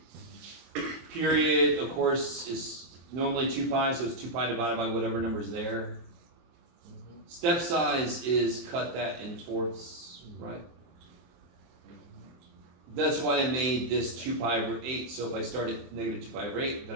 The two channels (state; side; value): late; left; 23 ms